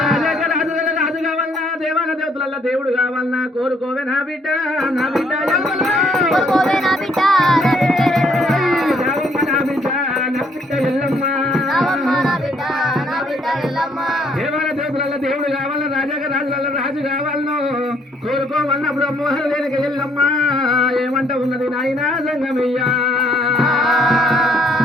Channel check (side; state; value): both; normal; correlation 0.66